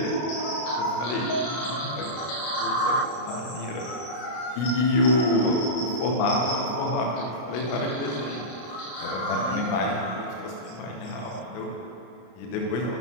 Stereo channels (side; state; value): right; late; 32 ms